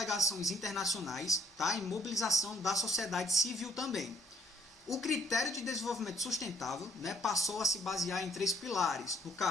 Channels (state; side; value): normal; both; correlation 0.64